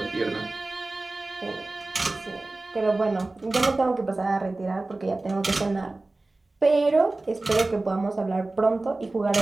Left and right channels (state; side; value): quieter; left; 3.1 dB